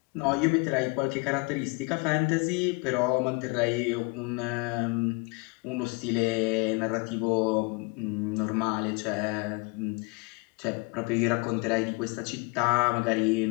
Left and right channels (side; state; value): right; quieter; 29.2 dB